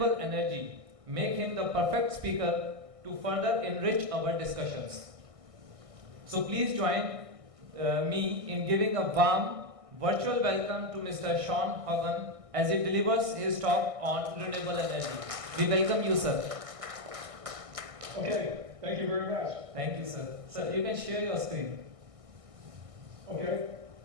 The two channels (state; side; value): late; left; 1.6 ms